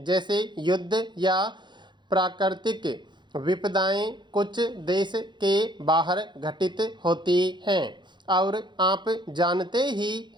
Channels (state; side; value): late; left; 0.22 ms